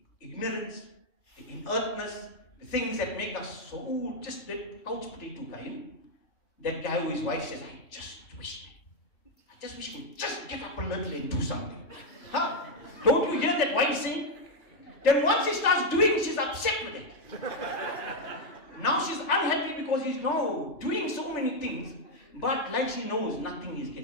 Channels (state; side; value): late; right; 3.4 ms